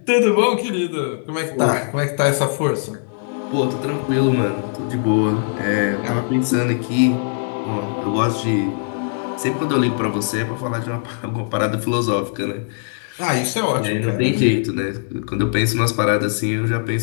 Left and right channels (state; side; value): silent; right; digital silence